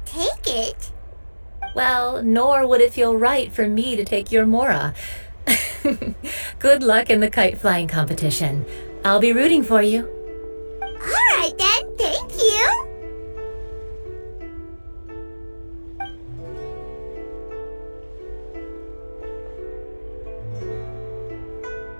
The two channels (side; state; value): both; inverted; correlation -1.00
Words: take it. Well, nor would it feel right for me to take your Mora. Good luck in the kite flying competition. I'll be rooting for you. All right then, thank you.